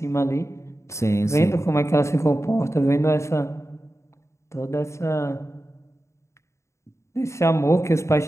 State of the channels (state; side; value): late; right; 0.14 ms